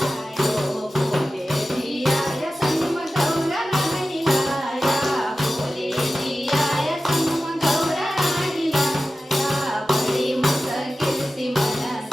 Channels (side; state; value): both; normal; correlation 0.94